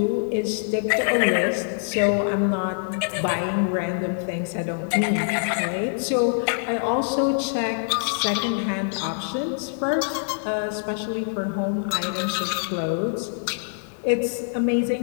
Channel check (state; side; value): silent; right; digital silence